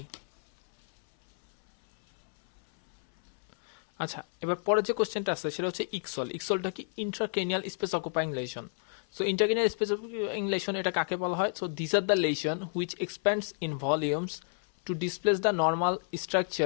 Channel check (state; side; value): silent; right; 58 dB below the other